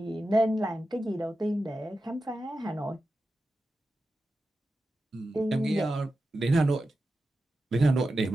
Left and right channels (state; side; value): normal; both; correlation 0.92